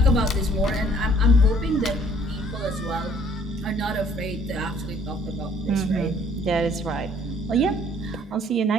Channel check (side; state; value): both; normal; correlation 0.59